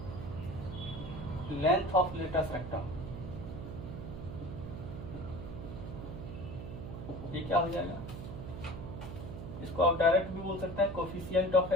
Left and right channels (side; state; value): right; noise; hum, 8 dB below the sound